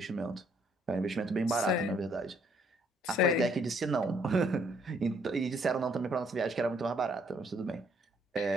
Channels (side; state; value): both; normal; correlation 0.66